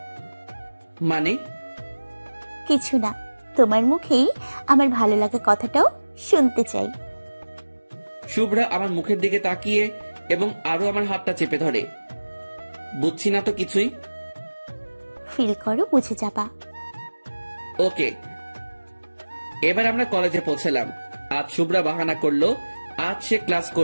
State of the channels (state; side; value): inverted; both; correlation -1.00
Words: মানে? কিছু না, তোমার মুখেই আমার ভালো লাগা কথাটাও শুনতে চাই। শুভ্রা আমার মুখের দিকে তাকিয়ে এবং আরো আমার হাতটা চেপে ধরে। বুঝছি না তো কিছুই। ফিল করো, বুঝে যাবা। ওকে। এবার আমরা কলেজে পৌঁছলাম। আজ শুভ্রা বাহানা করলো আজ সে ক্লাস